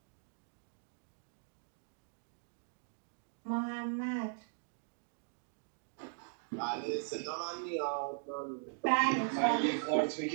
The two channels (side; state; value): left; silent; digital silence